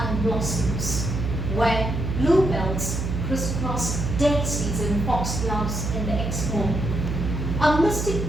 blossoms, where bluebells crisscross daisies and foxgloves in the Exmoor. A mystic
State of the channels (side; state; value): right; noise; hum, 2 dB below the sound